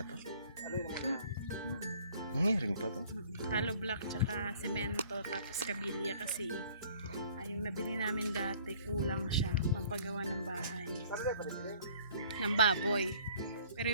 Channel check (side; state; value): both; inverted; correlation -0.54